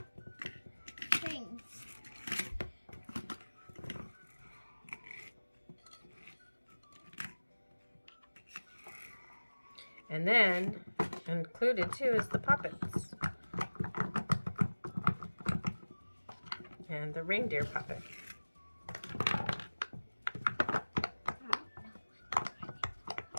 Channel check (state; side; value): inverted; both; correlation -1.00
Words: things. And then included too is the puppets. And the reindeer puppet.